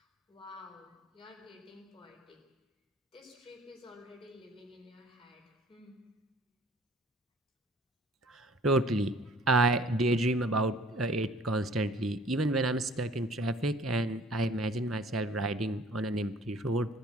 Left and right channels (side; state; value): both; normal; correlation 0.53